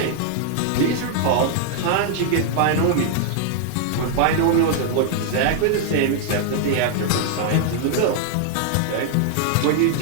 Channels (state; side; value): different; both; correlation 0.00